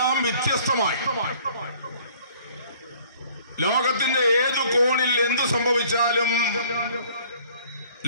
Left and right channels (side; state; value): both; inverted; correlation -0.55